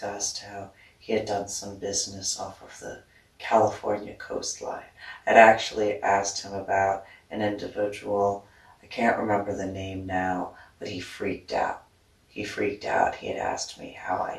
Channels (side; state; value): both; identical; correlation 1.00